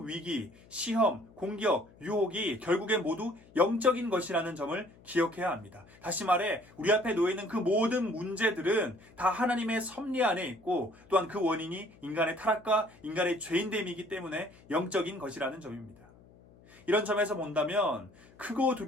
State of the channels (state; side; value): noise; left; hum, 25 dB below the sound